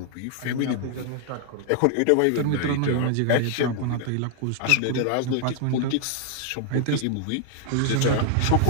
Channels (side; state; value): both; different; correlation 0.00